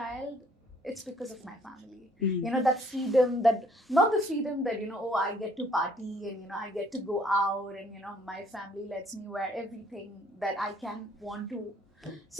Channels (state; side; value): normal; both; correlation 0.62